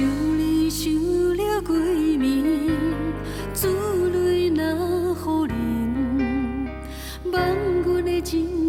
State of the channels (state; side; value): identical; both; correlation 1.00